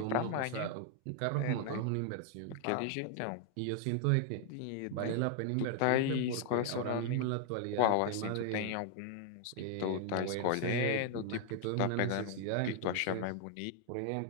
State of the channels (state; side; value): different; both; correlation 0.00